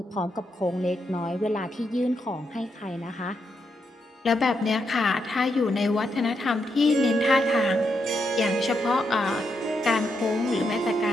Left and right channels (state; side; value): normal; both; correlation 0.81